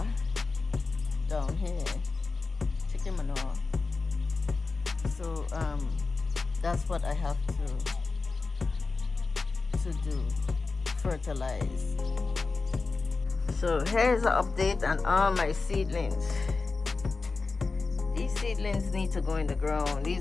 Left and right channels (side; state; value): right; quieter; 4.0 dB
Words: down here, chicken manure. So that's what I have to do, fertilize. So here's an update on all my seedlings. These seedlings need to go in the ground.